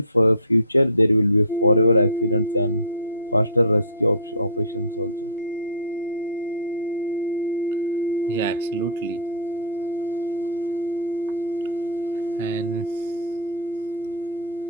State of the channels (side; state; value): both; inverted; correlation -0.37